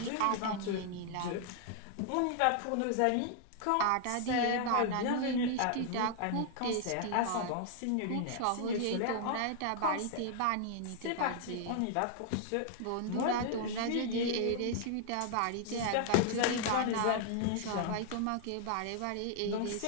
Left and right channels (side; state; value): both; different; correlation 0.00